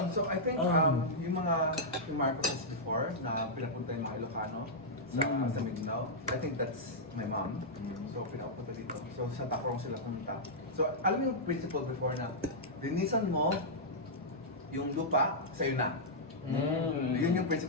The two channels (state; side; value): normal; both; correlation -0.09